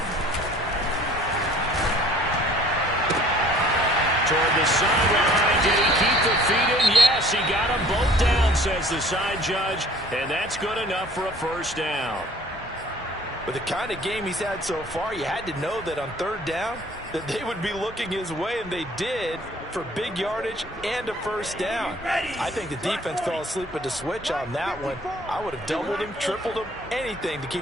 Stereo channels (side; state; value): both; normal; correlation 0.53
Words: Toward the sideline, did he keep the feet in? Yes, he got them both down, says the side judge, and that's good enough for a 1st down. With the kind of game he's had so far, you had to know that on 3rd down that they would be looking his way, and they did for big yardage and a 1st down. I think the defense fell asleep at the switch on that one. I would have doubled him, tripled him, anything to